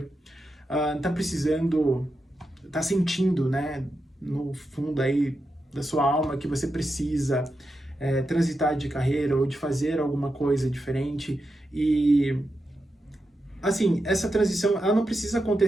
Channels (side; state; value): both; normal; correlation 0.88